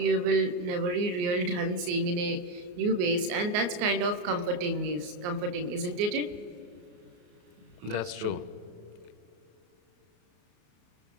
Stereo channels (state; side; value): late; left; 34 ms